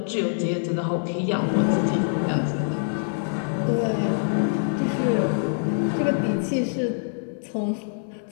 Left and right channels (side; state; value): right; silent; 62 dB below the other